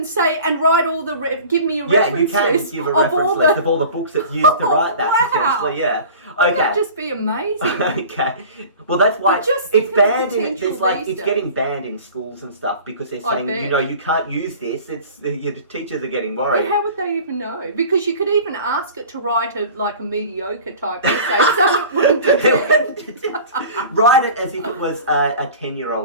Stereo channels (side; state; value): both; inverted; correlation -0.41